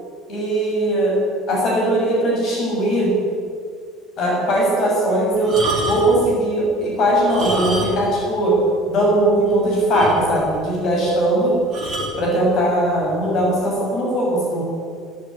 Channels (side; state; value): both; normal; correlation 0.46